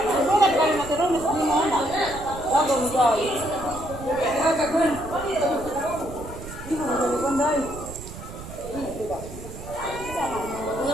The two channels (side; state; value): right; noise; rumble, 12 dB below the sound